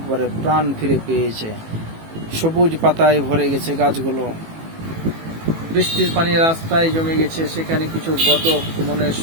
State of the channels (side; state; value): left; late; 18 ms